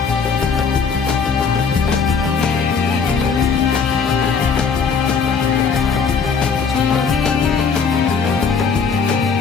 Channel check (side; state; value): right; quieter; 5.7 dB